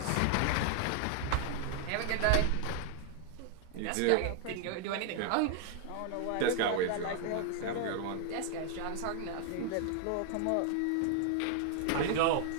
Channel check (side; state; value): both; different; correlation 0.00